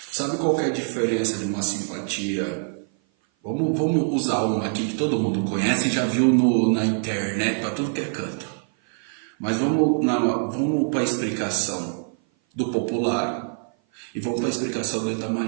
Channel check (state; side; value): silent; left; 56 dB below the other